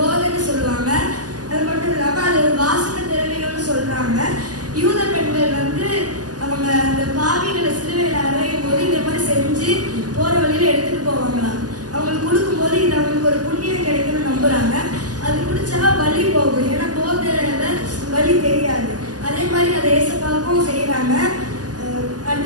சொல்லுவாங்க. அது மட்டும் இல்லாம அது ஒரு வாசனை திரவியம்னு சொல்றாங்க. யூத பெண்கள் அவங்க அந்த பாவிகளை சிலுவையில் அறையும் போது இந்த மாதிரி செஞ்சு போற வழியில எடுத்துட்டு போவாங்களாம். அவங்களுக்கு கொடுக்கும் போது இது அவங்களுக்கு ஒரு புண்ணியம் கிடைக்கும்னு நம்புறாங்க. அது குடிச்சா வலி போகும். ஏன்னா போதையில வலி தெரியாது. அதே மாதிரி அதை ஏசப்பாவுக்கும் செய்யறாங்க.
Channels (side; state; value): left; late; 0.68 ms